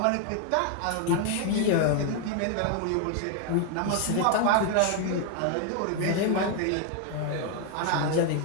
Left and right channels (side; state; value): both; different; correlation 0.00